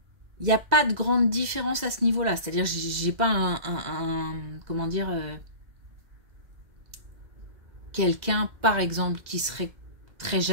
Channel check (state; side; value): late; left; 2.0 ms